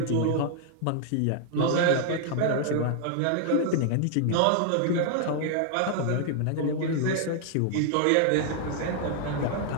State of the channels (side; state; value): both; different; correlation 0.00